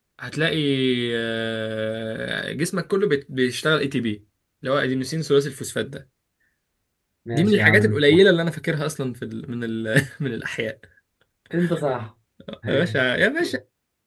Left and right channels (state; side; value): identical; both; correlation 1.00